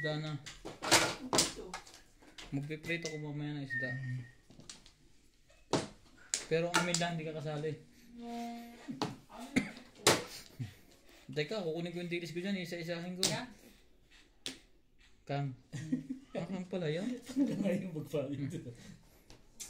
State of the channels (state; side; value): identical; both; correlation 1.00